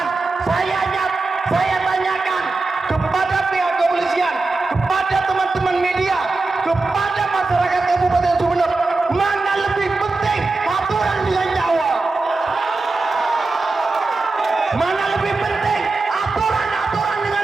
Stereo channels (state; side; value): quieter; left; 3.6 dB